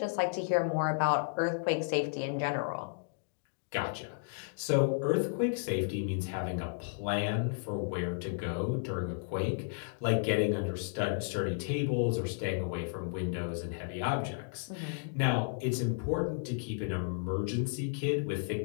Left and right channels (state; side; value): silent; right; digital silence